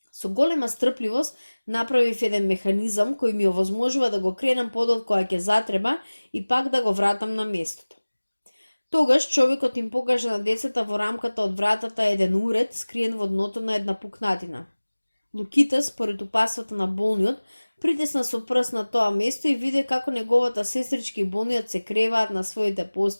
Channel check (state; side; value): inverted; both; correlation -1.00